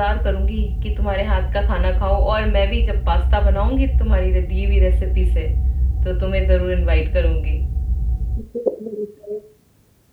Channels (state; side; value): identical; both; correlation 1.00